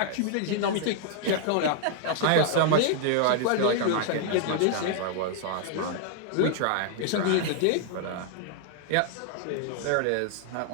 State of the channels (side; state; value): both; different; correlation 0.00